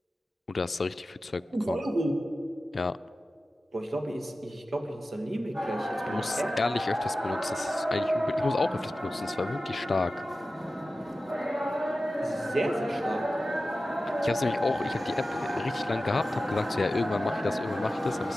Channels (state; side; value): normal; both; correlation 0.95